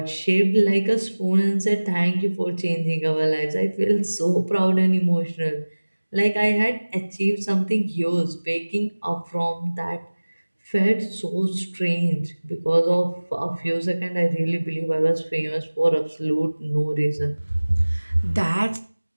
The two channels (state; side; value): inverted; both; correlation -1.00